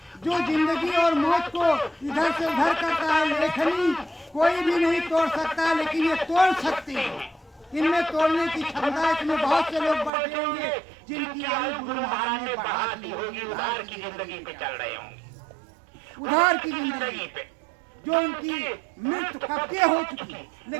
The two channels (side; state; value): left; drops out; at 10.1 s